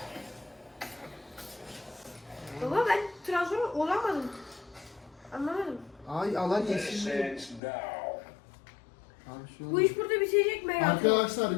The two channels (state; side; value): drops out; right; at 7.6 s